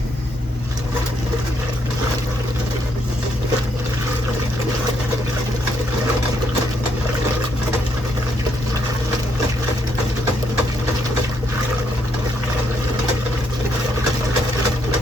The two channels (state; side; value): normal; both; correlation 0.74